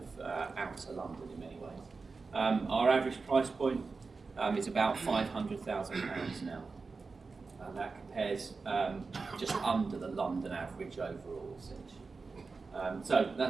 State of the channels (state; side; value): quieter; left; 4.3 dB